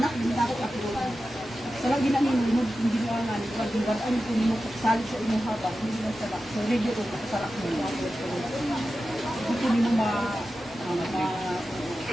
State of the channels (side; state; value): both; normal; correlation 0.93